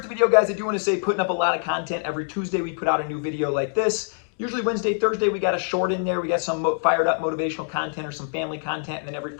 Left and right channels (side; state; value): right; silent; digital silence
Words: the video, guys, I do want to say putting up a lot of content. Every Tuesday we put out a new video like this. Usually Wednesday, Thursday, we got a short in there. We got some fired up motivational content or some family content. And then every